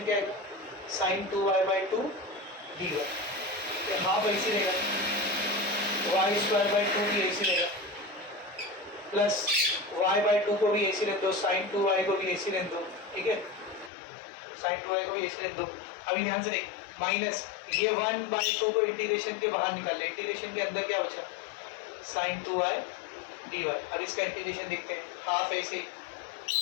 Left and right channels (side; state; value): right; drops out; at 13.9 s